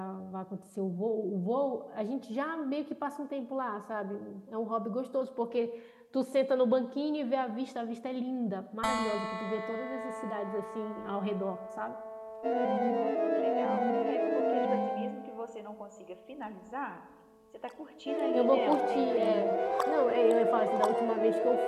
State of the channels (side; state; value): both; identical; correlation 1.00